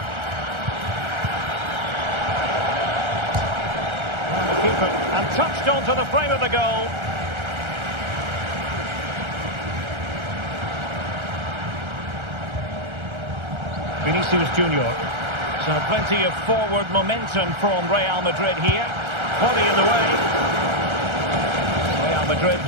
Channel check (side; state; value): left; late; 1.3 ms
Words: And the keeper, and touched onto the frame of the goal. Vinicius Junior. So plenty of forward momentum from Real Madrid here. Body in the way. Real Madrid